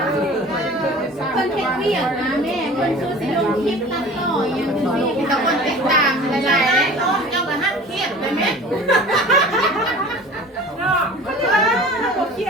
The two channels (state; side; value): normal; both; correlation 0.42